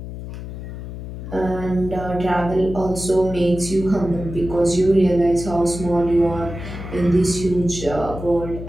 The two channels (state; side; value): noise; left; hum, 9 dB below the sound